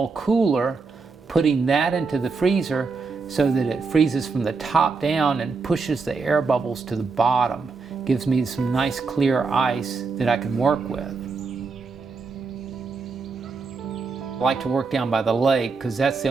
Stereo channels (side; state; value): left; quieter; 4.5 dB